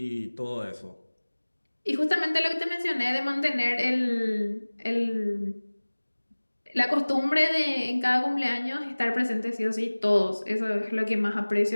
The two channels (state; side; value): inverted; both; correlation -1.00